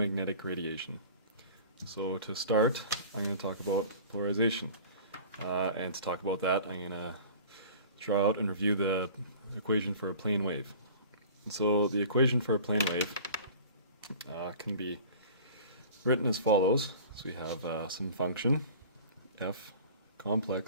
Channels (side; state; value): both; inverted; correlation -0.43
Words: radiation. So to start, I'm going to talk about polarization. And to talk about that, I'm going to draw out and review the equation for a plane wave. And so the equation for a plane wave can be written as follows. So we have some function, f